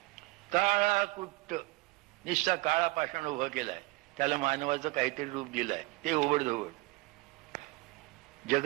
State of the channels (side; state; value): left; quieter; 23.2 dB